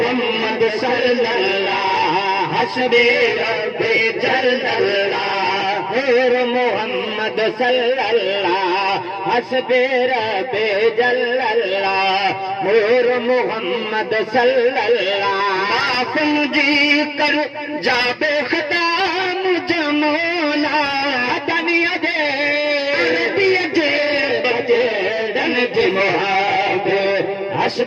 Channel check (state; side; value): identical; both; correlation 1.00